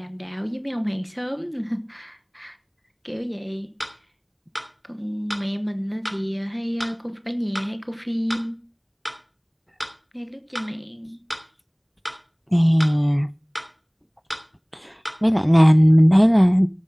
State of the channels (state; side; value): identical; both; correlation 1.00